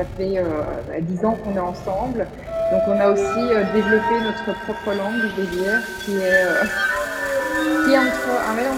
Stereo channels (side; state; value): both; identical; correlation 1.00